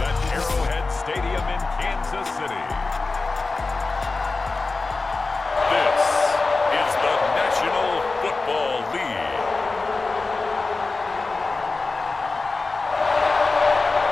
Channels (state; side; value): quieter; right; 3.7 dB